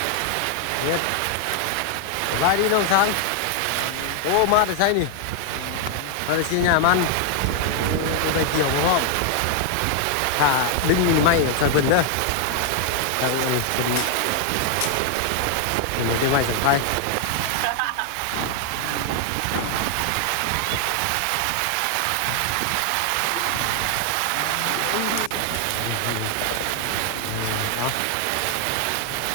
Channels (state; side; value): different; both; correlation 0.00